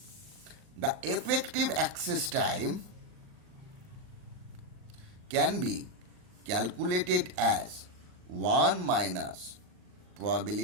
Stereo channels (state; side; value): late; left; 39 ms